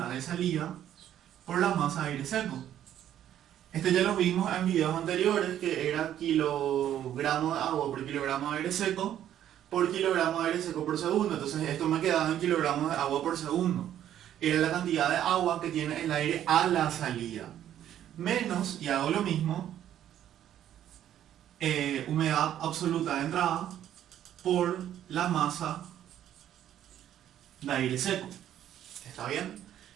de salida por la masa de aire seco. Esto ya lo vimos en videos anteriores, que era kilogramo de agua por kilogramo de aire seco por kilogramo de aire seco por segundo. Entonces esto me quedaba en kilogramos de agua por segundo. era la cantidad de agua que tiene el aire a la salida, menos, y hago lo mismo, humedad absoluta de entrada por la masa de aire seco. ¿Está bien?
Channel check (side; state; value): left; quieter; 11.1 dB